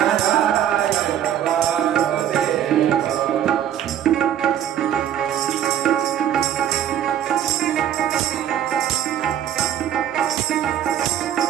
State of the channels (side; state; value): left; quieter; 10.3 dB